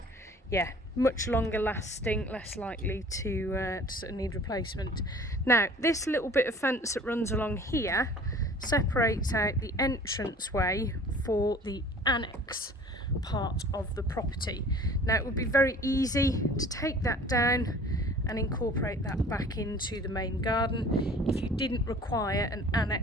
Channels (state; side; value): normal; both; correlation 0.48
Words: yeah, much longer lasting, less likely to sort of need replacement. Now this little bit of fence that runs along here separates out the entranceway for the annex part of the property. Now it would be very easy to take that down and incorporate that back into the main garden if you didn't require an